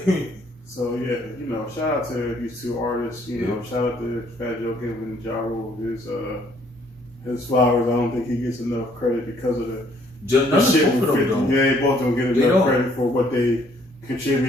So yeah, you know, shout out to these 2 artists. You know, shout out to Fat Joe Kim and Ja Rule. His flowers. I don't think he gets enough credit because of the shit with 50. Yeah, they both don't get enough credit for what they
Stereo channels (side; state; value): both; normal; correlation 0.64